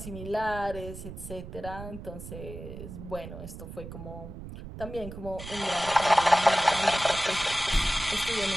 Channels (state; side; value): noise; right; rumble, 11 dB below the sound